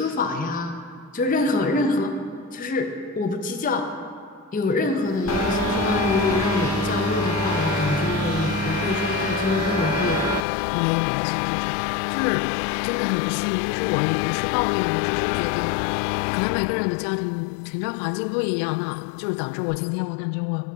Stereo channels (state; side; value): drops out; right; at 10.4 s